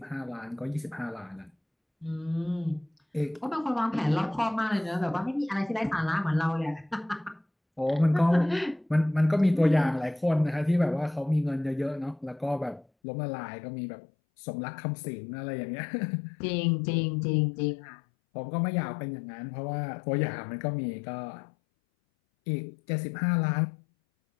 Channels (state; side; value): drops out; right; at 12.9 s